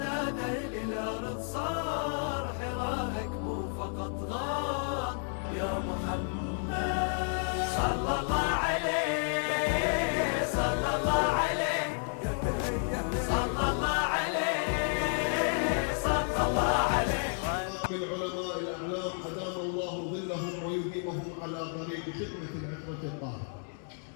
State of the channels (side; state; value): right; silent; 57 dB below the other